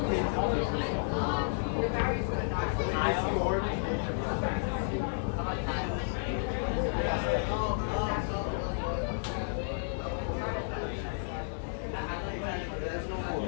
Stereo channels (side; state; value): right; silent; 56 dB below the other